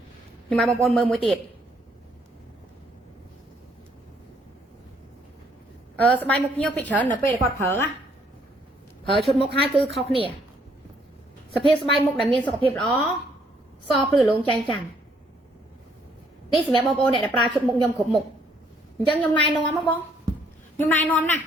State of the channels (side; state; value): both; normal; correlation 0.67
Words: ុំឲ្យបងប្អូនមើលមួយទៀតស្បែកមុខភ្ញៀវពីច្រើននៅពេលគាត់ប្រើឈុតមុខហើយគឺខុសគ្នាសភាពស្បែកមុខដែលមានសុខភាពល្អសភ្លឺលងចែងចាំងនេះសម្រាប់បងប្អូនអ្នកដែលប្រើឈុតមុខខ្ញុំគ្រប់មុខអញ្ចឹងខ្ញុំណែនាំមកបងខ្ញុំណែនាំណា